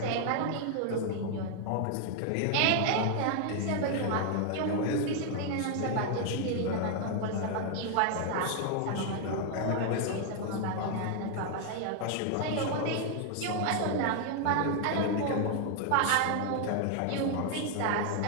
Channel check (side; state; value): both; different; correlation 0.00